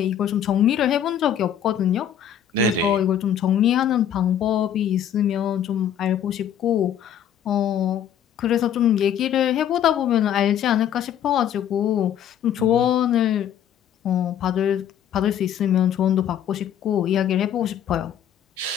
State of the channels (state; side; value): quieter; right; 9.5 dB